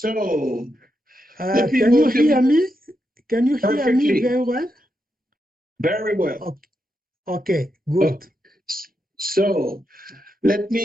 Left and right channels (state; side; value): normal; both; correlation 0.84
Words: let me Can you welcome hear me? Can you hear me perfectly, very well? very well. Okay, Oh, good. so let